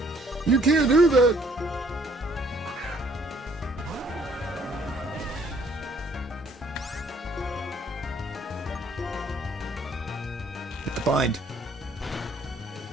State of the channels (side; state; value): both; normal; correlation 0.61